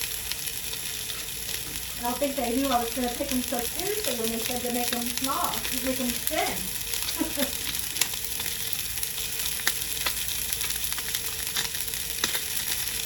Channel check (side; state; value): both; identical; correlation 1.00